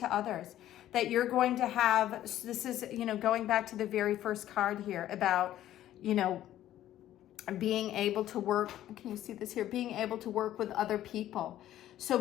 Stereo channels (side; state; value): right; quieter; 12.9 dB